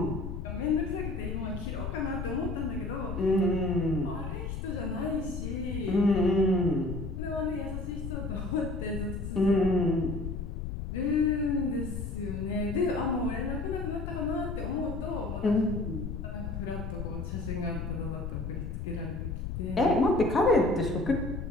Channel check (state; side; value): noise; left; rumble, 5 dB below the sound